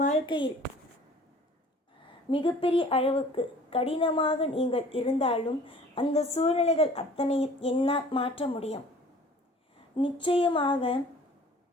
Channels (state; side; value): normal; both; correlation 0.49